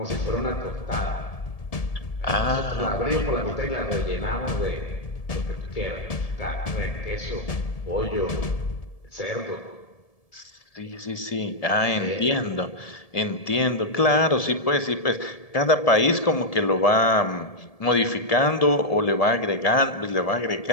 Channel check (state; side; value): late; right; 1.7 ms